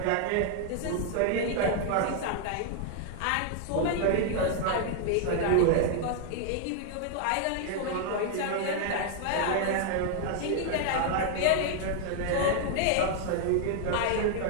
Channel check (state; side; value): different; both; correlation 0.00